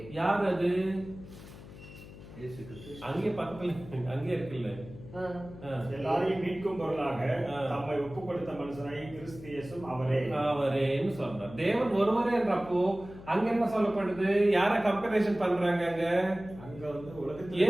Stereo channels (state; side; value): noise; left; hum, 16 dB below the sound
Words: யார் அது? இயேசு கிறிஸ்து. அங்கே பக்கத்துல அங்கே இருக்குல்ல. எல்லாரையும் மீட்கும் பொருளாக தம்மை ஒப்பு கொடுத்த மனுஷனாய் கிறிஸ்து இயேசுவும் அவரேன்னு சொல்றார். தேவன் ஒருவரேன்றப்போ அங்க என்ன சொல்லப்படுது? யார கம்பேரிசன் பண்றாங்க? அங்க வந்து உலகத்துல